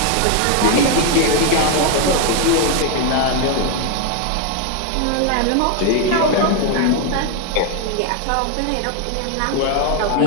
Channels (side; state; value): both; different; correlation 0.01